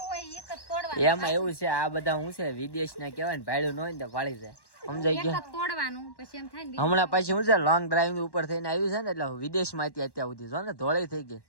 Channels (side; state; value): right; late; 1.1 ms